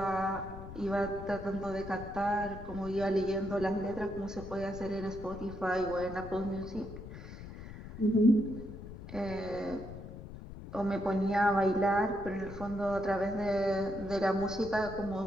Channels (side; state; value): left; noise; rumble, 12 dB below the sound